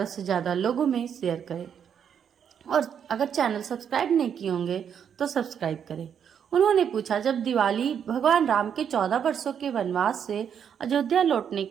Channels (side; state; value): left; quieter; 8.1 dB